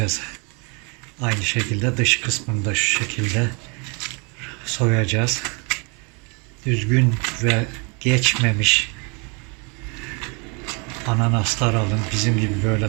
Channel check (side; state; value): left; quieter; 32.8 dB